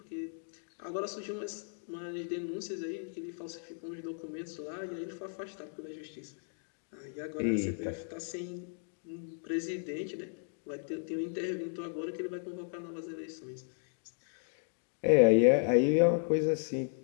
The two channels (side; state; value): right; silent; digital silence